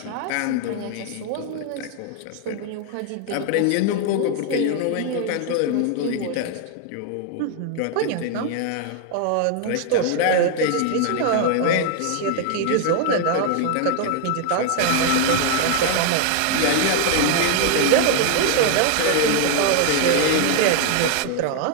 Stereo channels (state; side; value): different; both; correlation 0.01